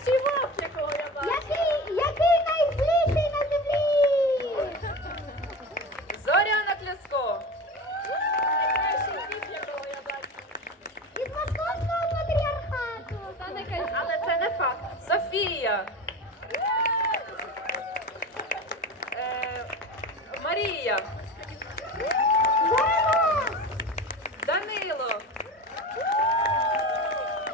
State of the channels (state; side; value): normal; both; correlation 0.30